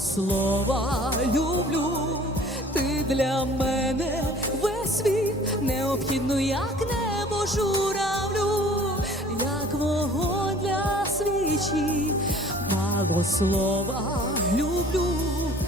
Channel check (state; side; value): normal; both; correlation 0.49